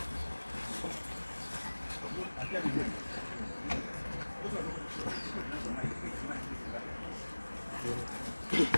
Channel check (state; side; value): inverted; both; correlation -1.00